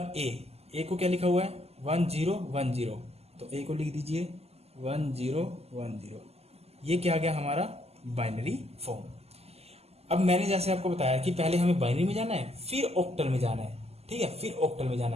ए को क्या लिखा हुआ है 1010, तो ए को लिख दीजिए 1010। ये क्या आ गया हमारा बाइनरी फॉर्म। अब मैंने जैसे आपको बताया कि पहले हमें बाइनरी में जाना है, फिर ऑक्टल में जाना है, ठीक है, फिर ऑक्टल में जाना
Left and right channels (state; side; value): late; left; 0.30 ms